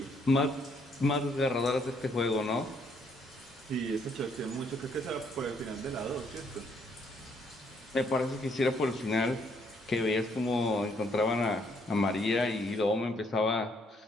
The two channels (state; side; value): normal; both; correlation 0.69